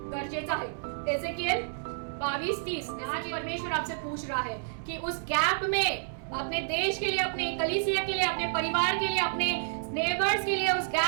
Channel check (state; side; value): silent; left; 57 dB below the other